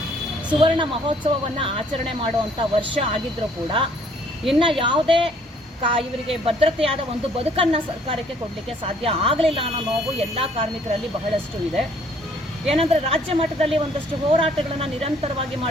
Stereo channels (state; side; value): normal; both; correlation 0.61